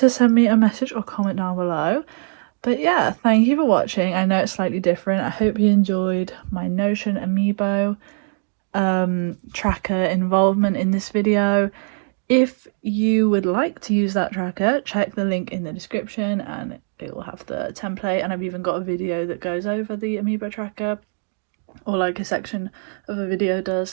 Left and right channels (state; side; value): silent; left; digital silence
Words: send me a message or comment down below. But yeah, thank you for watching. I know it's slightly different. I hope you enjoyed my Notion Amiibo tracker involvement in this video. If you would like to use that tracker, check the link in the description and it will have the template, and I've even got a video that goes over the Amiibo tracker, or like a section of a video